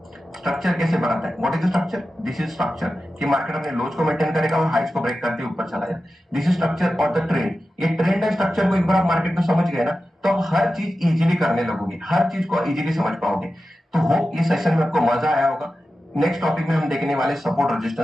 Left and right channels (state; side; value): normal; both; correlation 0.93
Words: स्ट्रक्चर कैसे बनाता है। What is the structure? This is structure कि मार्केट अपने लोज को मेंटेन करेगा और हाइज को ब्रेक करके ऊपर चला जाए। दिस इज स्ट्रक्चर और द ट्रेंड। ये ट्रेंड है स्ट्रक्चर को एक बार आप मार्केट में समझ गए ना, तो आप हर चीज इजीली करने लगोगे, हर चीज को इजीली समझ पाओगे। तो होप ये सेशन में आपको मजा आया होगा। नेक्स्ट टॉपिक में हम देखने वाले सपोर्ट